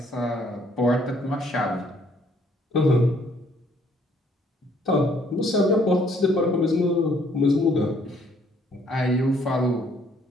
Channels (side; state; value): both; normal; correlation 0.64